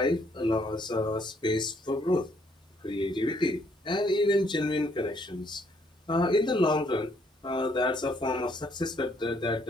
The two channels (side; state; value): both; normal; correlation 0.68